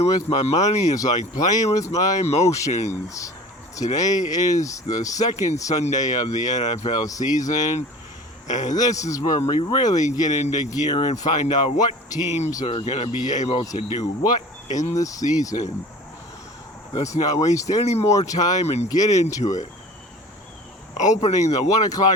with my money is like playing with my emotions. Today is the second Sunday of the NFL season, and this is where we really get into gear and find out what teams are going to be able to do what in the season. Let's not waste any more time and get into it. Opening the 1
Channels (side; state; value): both; normal; correlation 0.41